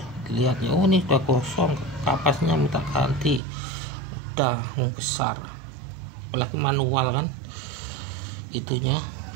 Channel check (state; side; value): drops out; left; at 3.4 s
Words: dilihatnya. Oh ini sudah kosong, kapasnya minta ganti, udah besar, apalagi manual kan itunya,